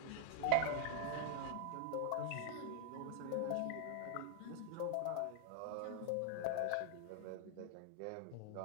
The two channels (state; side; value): different; both; correlation 0.00